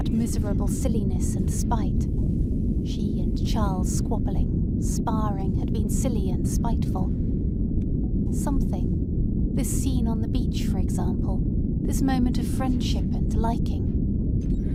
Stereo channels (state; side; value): identical; both; correlation 1.00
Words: miserable silliness and spite. She and Charles squabbling, sparring, had been silly and spiteful. Something, this scene on the beach, for example, this moment of friendship and